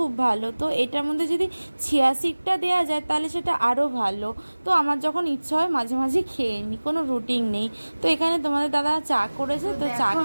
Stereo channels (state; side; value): inverted; both; correlation -1.00